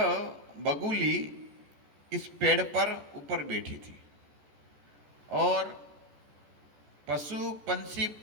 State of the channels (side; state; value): left; late; 14 ms